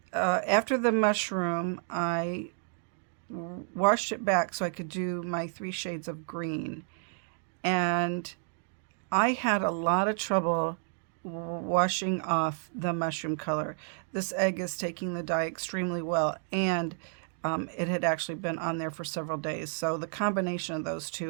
after the mushroom, I washed it back so I could do my 3 shades of green. And I had a lot of trouble washing off the mushroom color. This egg is taking the dye extremely well, and it had actually been on there for several days. So the combination of those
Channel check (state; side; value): silent; left; 57 dB below the other